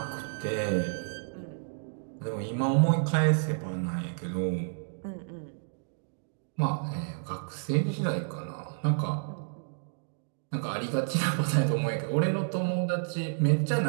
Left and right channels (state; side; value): silent; left; digital silence